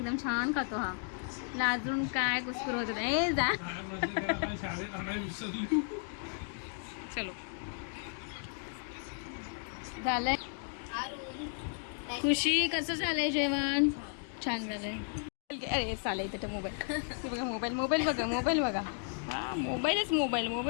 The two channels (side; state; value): right; silent; 55 dB below the other